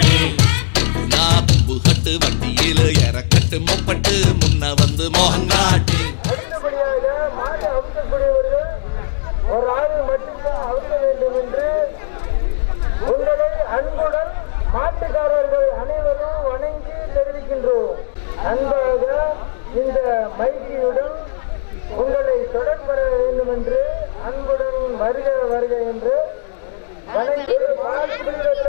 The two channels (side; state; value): right; silent; 68 dB below the other